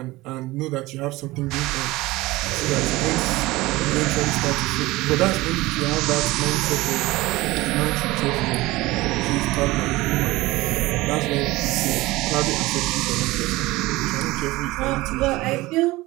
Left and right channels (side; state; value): left; quieter; 19.7 dB